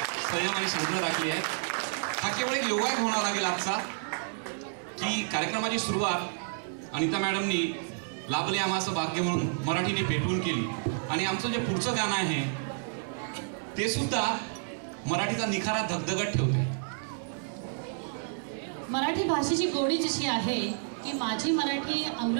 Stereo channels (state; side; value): silent; left; digital silence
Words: संयम आणि शांतता राखली आहे. हा केवळ एक योगायोग होणार लागेल आजचा की कार्यक्रमाची सुरुवात अनिता मॅडमनी लाभले आम्हाचं भाग्य म्हणून मराठीने पेटवून केली आणि आमचं जे पुढचं गाणं आहे ते सुद्धा मराठीचा निखारा धगधगत ठेवते. मराठी भाषेची गोडी जशी आहे की माझी मराठी